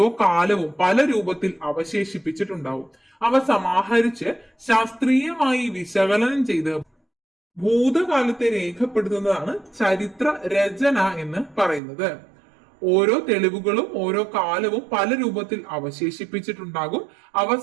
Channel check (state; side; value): drops out; left; at 11.8 s